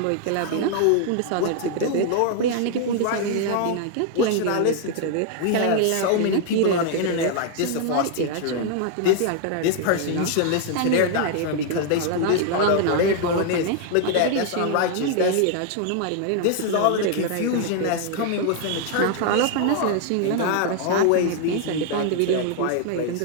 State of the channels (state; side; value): different; both; correlation 0.00